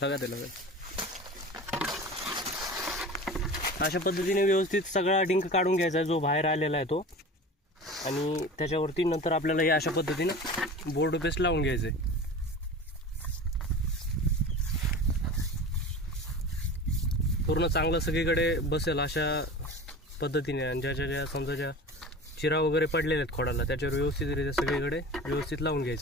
लगा दे. अशा पद्धतीने व्यवस्थित सगळा डिंक काढून घ्यायचा आहे जो बाहेर आलेला आहे तो, आणि त्याच्यावरती नंतर आपल्याला हे अशा पद्धतीने बोर्ड पेस्ट लावून घ्यायचं आहे. पूर्ण चांगलं सगळीकडे बसेल अशा पद्धतीने, आणि ज्या समजा ज्या चिरा वगैरे पडलेले आहेत खोडाला त्याच्यावर व्यवस्थितरित्या सगळीकडे व्यवस्थित लावून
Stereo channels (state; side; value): normal; both; correlation 0.35